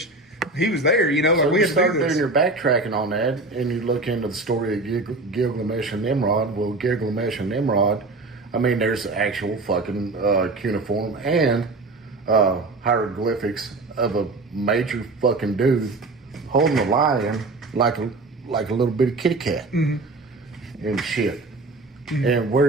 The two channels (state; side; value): quieter; left; 3.2 dB